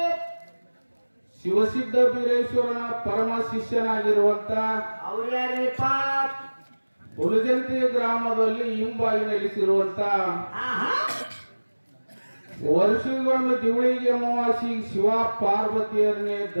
ಶಿವಸಿದ್ಧ ಬೀರೇಶ್ವರನ ಪರಮ ಶಿಷ್ಯನಾಗಿರುವಂತ ಹುಲಜಂತಿ ಗ್ರಾಮದಲ್ಲಿ ಹಿಂಬಾಗಿ ನೆಲೆಸಿರುವಂತ ವರ್ಷಗೊಂದು ದಿವಳಿಗೆ ಅಮಾವಾಸಿ ಶಿವ ಪಾರ್ವತಿಯರನ್ನೇ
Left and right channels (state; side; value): inverted; both; correlation -1.00